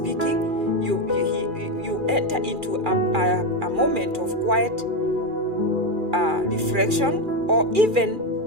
you enter into a moment of quiet reflection, or even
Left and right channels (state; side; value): late; left; 2.4 ms